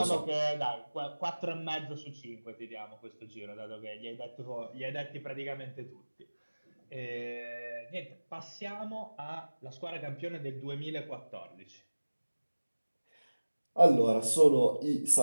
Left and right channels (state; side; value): inverted; both; correlation -1.00